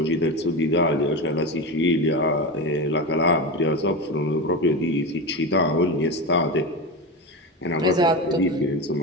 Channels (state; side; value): normal; both; correlation 0.20